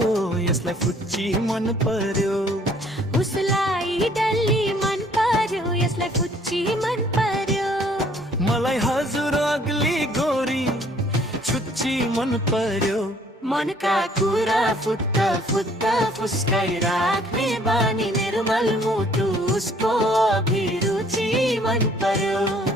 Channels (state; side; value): normal; both; correlation 0.59